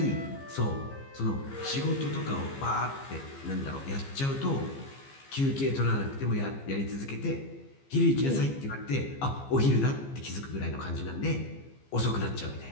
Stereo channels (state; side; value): late; right; 15 ms